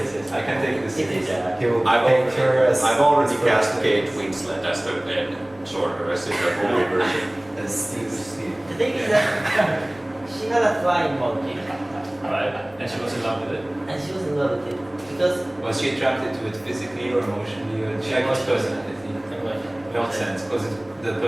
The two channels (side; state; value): left; noise; rumble, 28 dB below the sound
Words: I can take this It is. seriously. He will I've picture us. already cast Kate Winslet as the sorceress in the movie version. And Steve. The thing is that she had a flying monkey Alright. And she was in love with it. and she was in love with it Because Was she attracted to it physically or emotionally or she liked its personality? Nonsense, because it's the